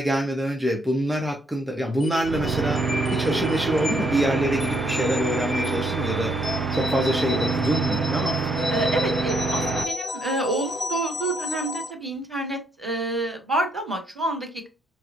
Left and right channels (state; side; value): normal; both; correlation 0.72